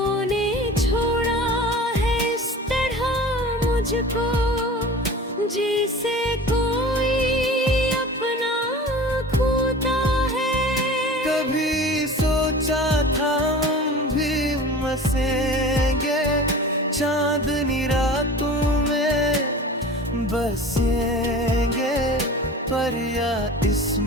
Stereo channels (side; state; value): both; normal; correlation 0.37